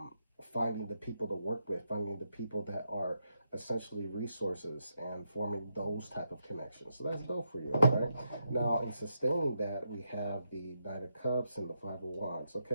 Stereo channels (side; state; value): both; inverted; correlation -0.83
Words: finding the people to work with, finding the people that are essentially resources and forming those type of connections. So that's dope for you, right? Now, in sustaining that, we have the Knight of Cups and the Five of Wands,